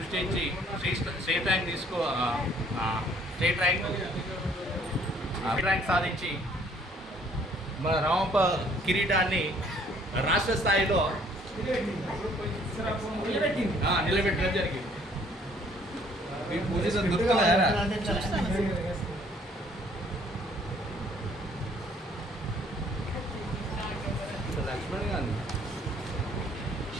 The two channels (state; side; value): normal; both; correlation 0.60